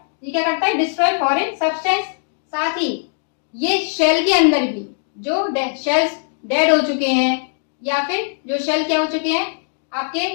ये क्या करता है, डिस्ट्रॉय फॉरेन सब्सटेंस। साथ ही ये शेल के अंदर भी जो शेल्स डेड हो चुके हैं, या फिर जो शेल क्या हो चुके हैं, आपके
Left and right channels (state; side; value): silent; right; digital silence